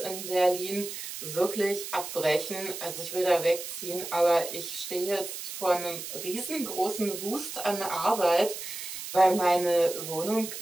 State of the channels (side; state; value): right; noise; hiss, 8 dB below the sound